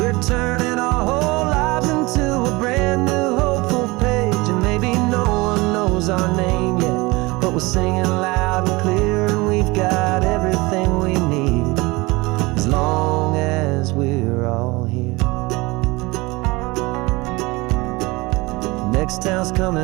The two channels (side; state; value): left; quieter; 23.2 dB